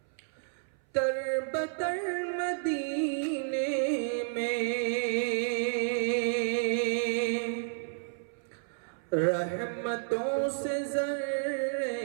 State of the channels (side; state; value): left; silent; 57 dB below the other